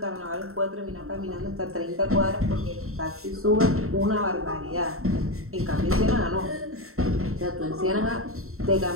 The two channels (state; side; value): late; left; 0.63 ms